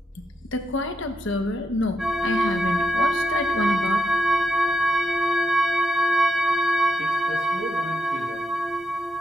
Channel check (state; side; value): normal; both; correlation 0.84